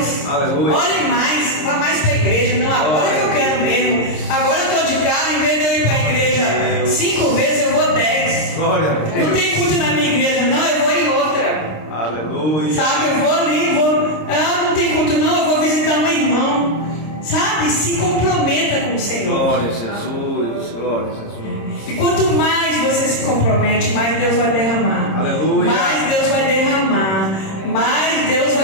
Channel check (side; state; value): right; late; 26 ms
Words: Aleluia. Ore mais, vá mais para a igreja. Não, agora que eu quero mesmo. Agora eu estou de carro, em vez de eu ir para a igreja 5 vezes, eu vou 10. Glória a Deus. Não tem culto na minha igreja, não, eu vou em outra. Aleluia. Sabe, eu vou ali, não tem culto não, eu vou visitar um irmão. Sabe, se comprometa com o Senhor. Glória a Jesus, glória a Jesus. E quanto mais você se compromete, mais Deus vai derramar. Aleluia. Mais Deus vai derramar. Mais Deus